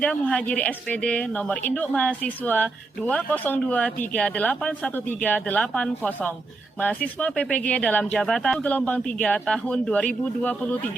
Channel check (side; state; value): left; quieter; 3.4 dB